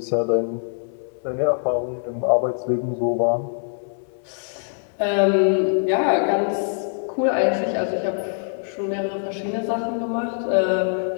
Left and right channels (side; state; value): right; silent; 62 dB below the other